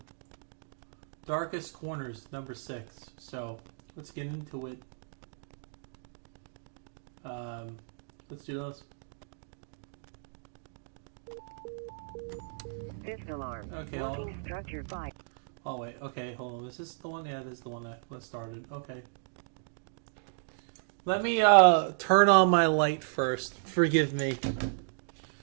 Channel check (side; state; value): left; silent; digital silence